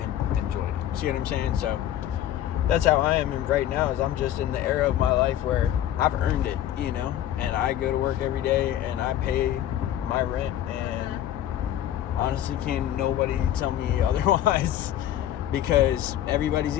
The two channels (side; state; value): right; quieter; 11.8 dB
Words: enjoyed it. See what I'm saying? So, that's how I am right now, is I'm just in the era of my life where I've earned it, you know, and I go to work every day and I pay my rent, and honestly, can't nobody tell me otherwise, because everybody's